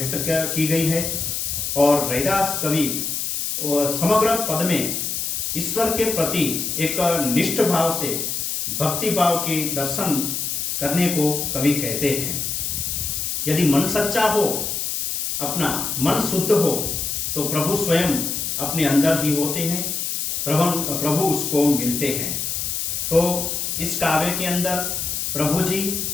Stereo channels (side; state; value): left; noise; hiss, 2 dB below the sound